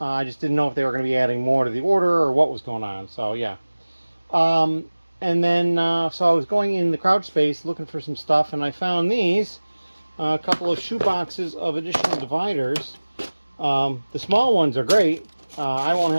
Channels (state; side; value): inverted; both; correlation -1.00